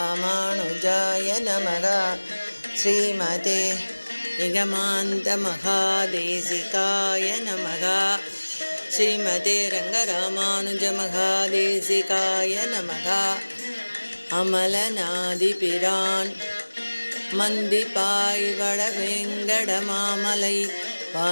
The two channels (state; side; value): inverted; both; correlation -1.00